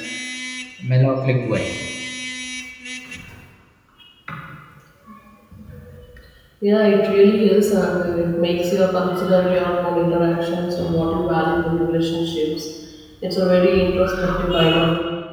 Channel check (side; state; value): both; identical; correlation 1.00